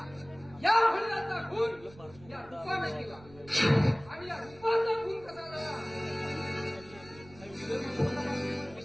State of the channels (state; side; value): noise; right; rumble, 22 dB below the sound